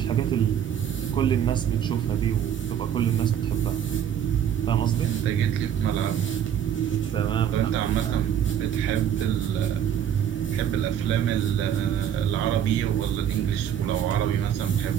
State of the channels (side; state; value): left; quieter; 9.4 dB